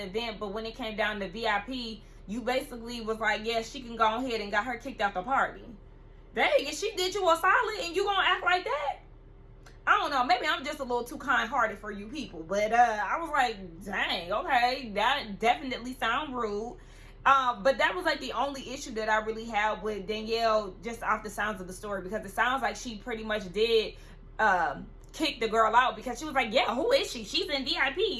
event, but when it came down to VIP, you basically was like, yeah, she can go ahead and got her kicked out the party. Dang, if she did you a solid and you gonna act like that? I don't know, maybe I'm just a little too kind-hearted for you people, but I was like, dang, okay, that definitely sound rude. But that was like the only issue that I really had with Danielle, just off the sounds of the story, because it sounds like she pretty much did kick the girl out because she was like, yeah, who is she? She's in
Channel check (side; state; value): both; identical; correlation 1.00